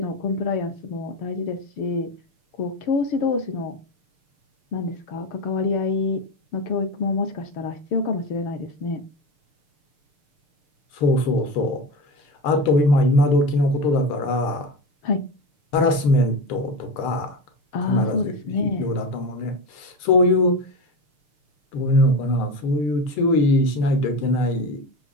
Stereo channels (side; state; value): right; late; 6.7 ms